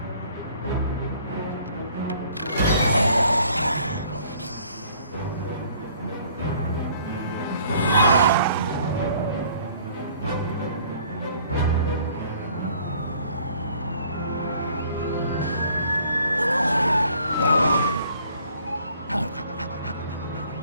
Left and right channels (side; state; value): both; inverted; correlation -0.57